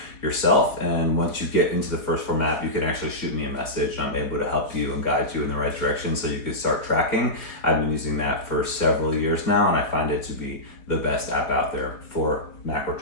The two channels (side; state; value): right; late; 4.3 ms